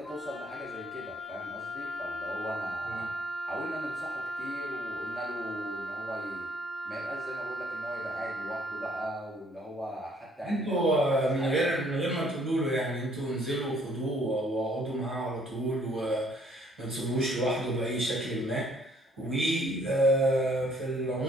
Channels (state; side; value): normal; both; correlation 0.63